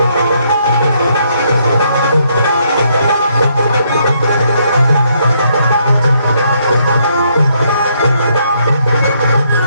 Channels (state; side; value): inverted; both; correlation -0.72